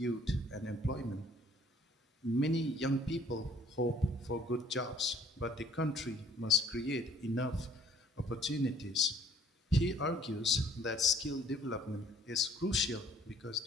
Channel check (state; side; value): normal; both; correlation 0.57